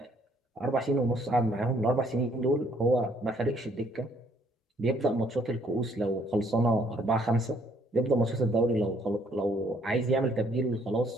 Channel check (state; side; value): normal; both; correlation 0.65